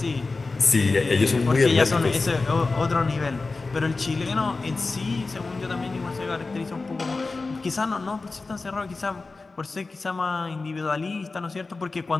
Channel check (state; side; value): quieter; right; 3.8 dB